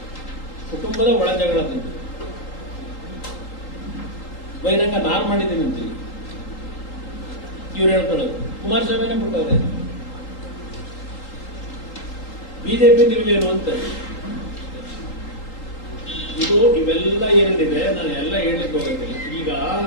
ಕುಟುಂಬದ ಒಳಜಗಳದಿಂದ ಬಹಿರಂಗ ನಾನು ಮಾಡಿದ್ದೀನಿ ಅಂತೀವಿ ಇವ್ರು ಹೇಳ್ಕೊಳ್ಳೋದು. ಕುಮಾರಸ್ವಾಮಿನೇ ಬಿಟ್ಟವ್ರೆ. ಬಿಜೆಪಿ ನಿಲುವೇನು ಅಂತ ಇದು ಇವೆಲ್ಲ ಏನೇನಿದೆ ನಾನು ಎಲ್ಲ ಹೇಳಲಿಕ್ಕೆ ಹೋಗೋದಿಲ್ಲ. ಈಗ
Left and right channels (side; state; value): right; late; 3.8 ms